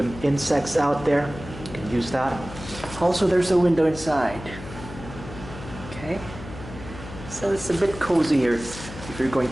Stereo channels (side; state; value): left; noise; hum, 13 dB below the sound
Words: insects out there, you can use that. Also, there's a window inside. Okay, so it's a bit cozier if you're going